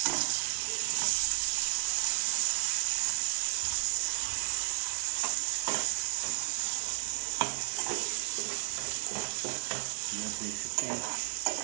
देख सकते हैं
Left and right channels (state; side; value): silent; left; digital silence